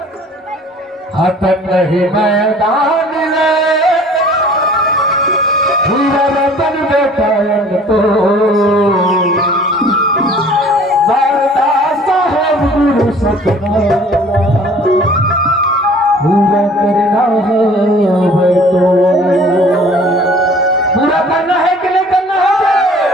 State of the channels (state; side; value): normal; both; correlation 0.50